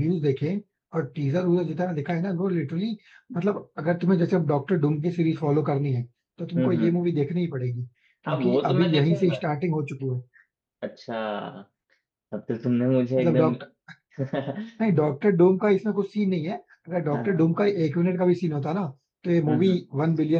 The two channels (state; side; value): identical; both; correlation 1.00